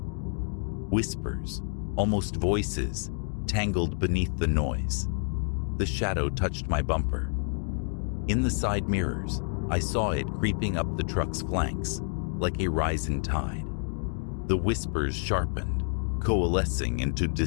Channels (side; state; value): right; silent; 56 dB below the other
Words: Whispers, almost voices, tangled beneath the noise. The shadow touched my bumper. In the side mirrors, I saw it creeping up the truck's flanks, like a rising tide. The whispers sharpened, coalescing into